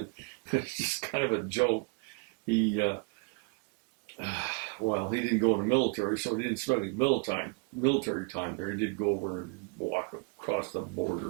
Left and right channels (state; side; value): quieter; left; 32.4 dB